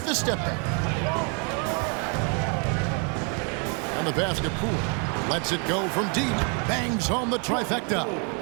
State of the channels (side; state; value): left; quieter; 37.0 dB